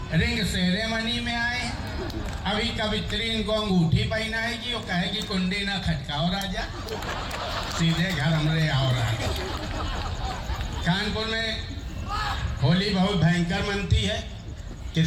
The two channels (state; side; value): identical; both; correlation 1.00